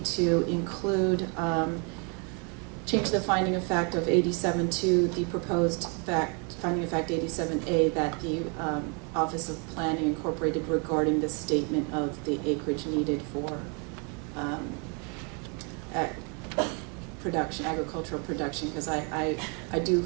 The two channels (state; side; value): quieter; left; 35.6 dB